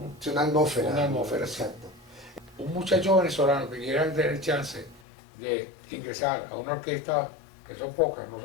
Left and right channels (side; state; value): right; drops out; at 5.0 s